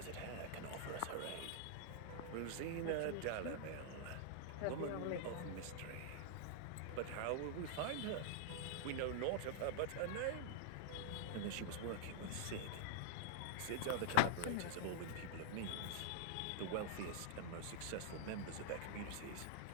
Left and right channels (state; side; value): different; both; correlation -0.01